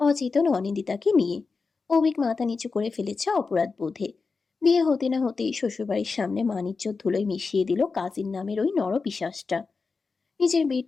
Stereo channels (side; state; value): right; quieter; 4.5 dB